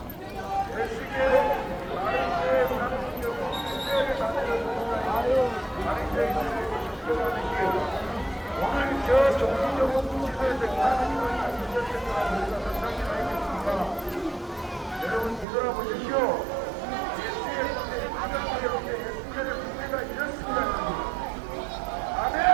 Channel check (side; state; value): left; drops out; at 15.5 s